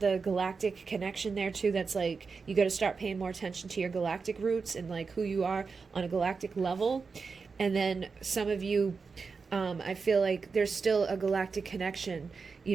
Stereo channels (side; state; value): left; quieter; 4.9 dB